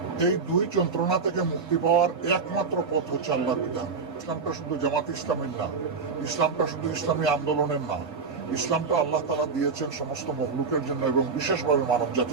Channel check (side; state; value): left; quieter; 5.0 dB